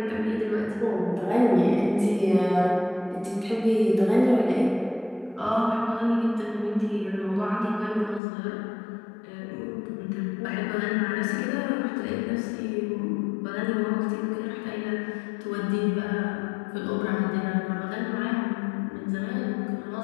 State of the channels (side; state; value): right; drops out; at 8.2 s